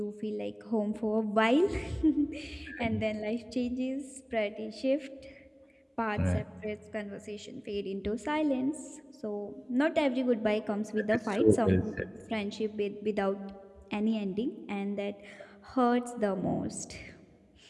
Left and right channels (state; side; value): identical; both; correlation 1.00